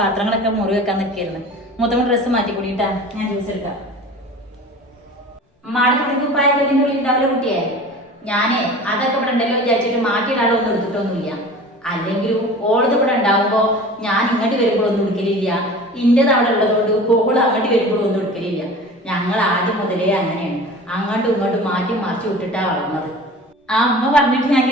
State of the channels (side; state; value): both; normal; correlation 0.39